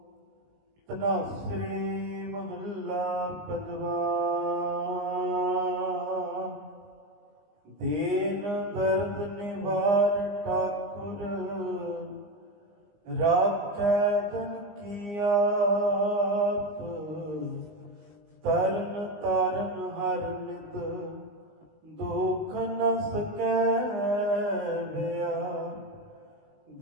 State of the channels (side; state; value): left; late; 19 ms